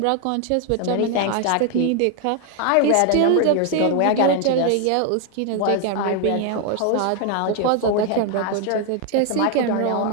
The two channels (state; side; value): different; both; correlation 0.01